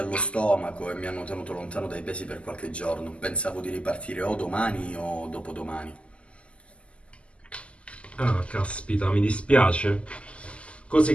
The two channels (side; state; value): right; late; 0.056 ms